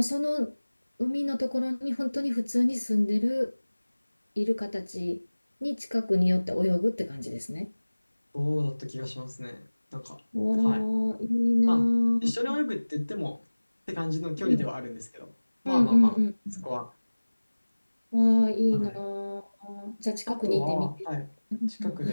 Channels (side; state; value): both; inverted; correlation -1.00